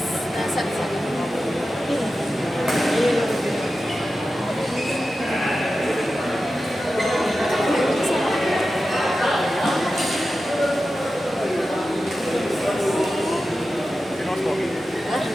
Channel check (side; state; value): both; normal; correlation 0.92